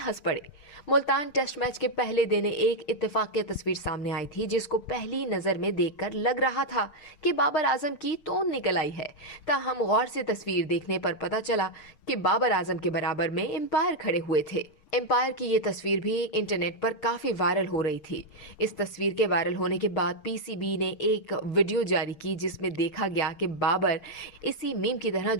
पड़े। मुल्तान टेस्ट मैच के पहले दिन एक इत्तेफाकी तस्वीर सामने आई थी, जिसको पहली नजर में देखकर लग रहा था कि बाबर आजम की तोन निकल आई है। ताहम गौर से तस्वीर देखने पर पता चला कि बाबर आजम के बराबर में एम्पायर खड़े हुए थे। एम्पायर की ये तस्वीर भी इंटरनेट पर काफी वायरल हो रही थी। इस तस्वीर के वायरल होने के बाद पीसीबी ने एक वीडियो जारी की, जिसमें देखा गया कि बाबर इसी मीम की तरह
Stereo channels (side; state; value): right; late; 6.5 ms